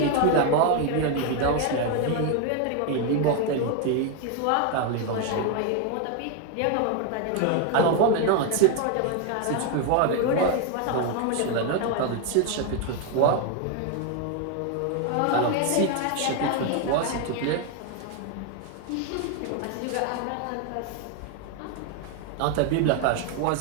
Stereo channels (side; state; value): both; different; correlation 0.01